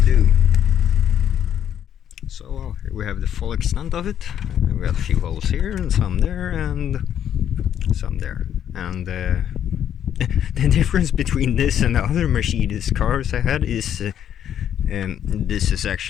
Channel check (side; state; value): right; quieter; 9.8 dB